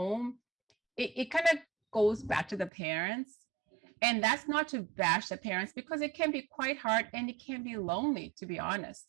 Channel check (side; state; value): left; drops out; at 2.7 s